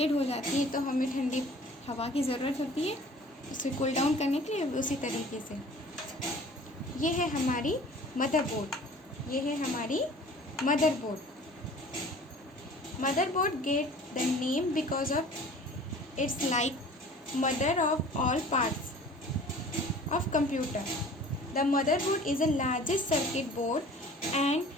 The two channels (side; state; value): both; normal; correlation 0.47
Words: हो जाती है तो हमें ठंडी हवा की ज़रूरत होती है उसे कूल डाउन करने के लिए, उसी तरीके से ये है हमारी मदरबोर्ड, ये है हमारी motherboard. Motherboard get the name because of its like mother of all parts of computer. The motherboard is the largest circuit board and